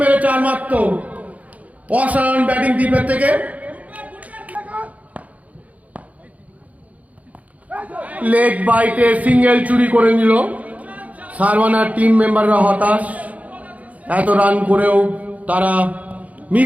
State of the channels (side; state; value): left; late; 0.070 ms